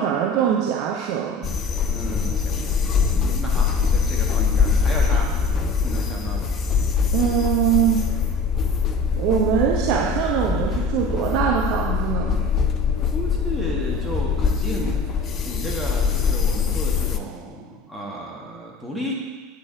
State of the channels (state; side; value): normal; both; correlation 0.40